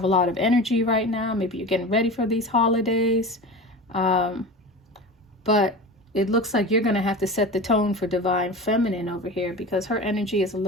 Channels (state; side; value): normal; both; correlation 0.31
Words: a lot of energy right now. Maybe you're getting ready for these holidays. But it looks like you're going to have to set the tone for Divine Feminine over here, because her energy is a